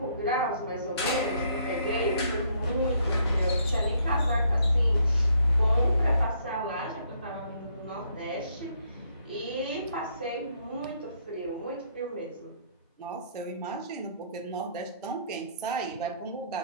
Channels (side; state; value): both; inverted; correlation -0.68